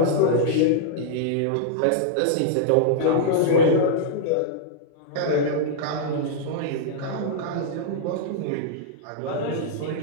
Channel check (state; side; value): different; both; correlation -0.02